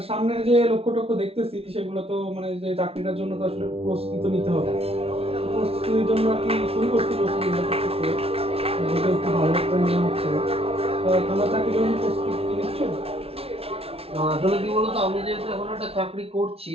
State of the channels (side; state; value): left; late; 0.29 ms